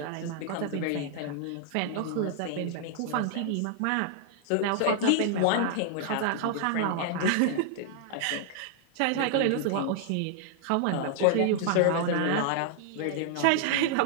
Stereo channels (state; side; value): different; both; correlation -0.01